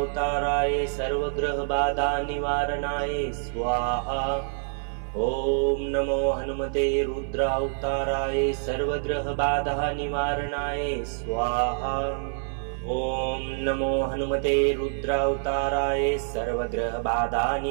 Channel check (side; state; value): left; silent; 56 dB below the other